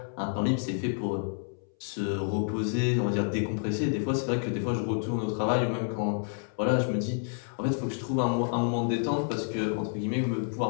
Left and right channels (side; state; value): right; silent; 58 dB below the other